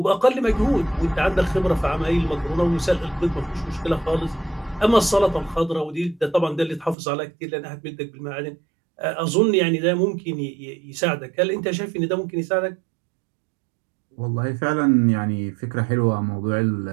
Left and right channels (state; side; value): drops out; left; at 7.0 s